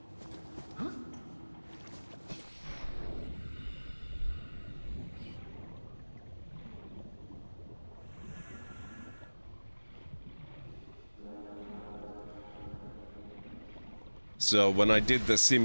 So when I did the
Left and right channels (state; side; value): inverted; both; correlation -1.00